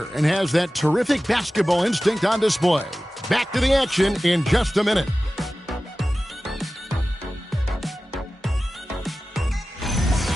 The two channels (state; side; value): normal; both; correlation 0.96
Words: and has that terrific basketball instinct on display. Back to the action in just a minute.